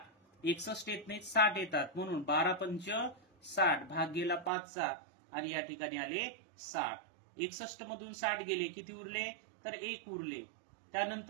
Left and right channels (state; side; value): drops out; left; at 4.5 s